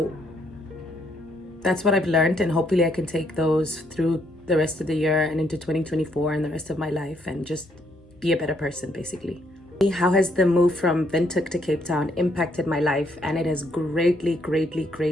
that's what I've learned, and hopefully I can take those through the rest of the year and into 2024 and the rest of my life and just be a better person, basically. How has the move from Windhoek to Cape Town impacted my life? And it has greatly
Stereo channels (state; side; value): normal; both; correlation 0.72